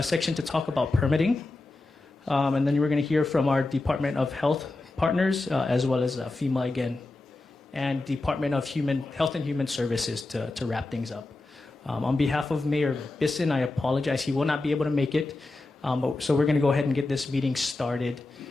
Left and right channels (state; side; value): quieter; right; 3.0 dB